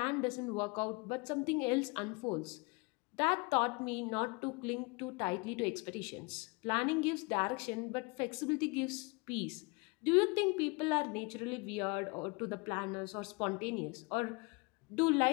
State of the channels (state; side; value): quieter; right; 29.1 dB